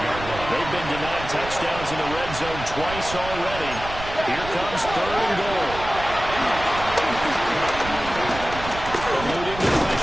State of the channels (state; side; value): noise; right; rumble, 11 dB below the sound